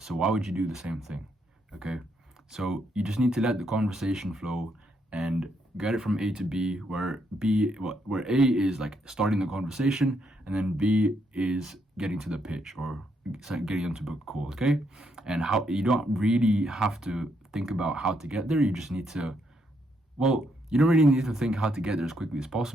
So why would you do the same thing? Okay. So you just need to let the conversation flow and get it from A to B, where A is like starting the conversation, and then B is getting to the pitch or getting them to book a call. Okay. And how you don't really have to think about how to get there. You just need to, you don't really need to think how to get there as quickly as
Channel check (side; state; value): both; normal; correlation 0.76